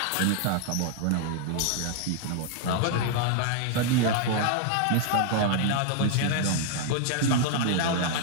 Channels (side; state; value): both; different; correlation 0.00